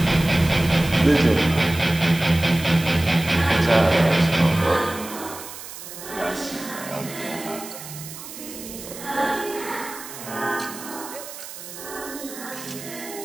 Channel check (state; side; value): noise; right; hiss, 13 dB below the sound